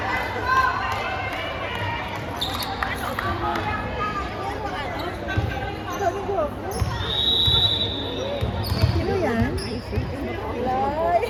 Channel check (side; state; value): both; identical; correlation 1.00